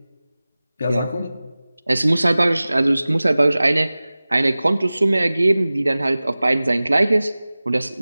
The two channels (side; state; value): both; inverted; correlation -0.98